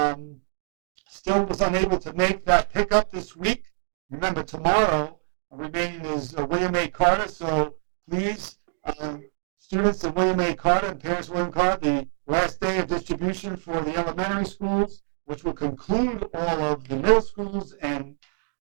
still was unable to make that pickup this week, remember tomorrow remaining is William A. Carter. So please, students of William A. Carter and parents of William Carter, the last day of distribution for the elementary schools, which will conclude all of the middle schools and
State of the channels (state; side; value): silent; left; digital silence